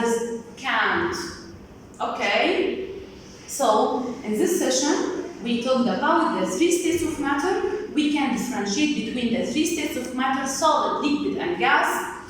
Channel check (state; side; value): identical; both; correlation 1.00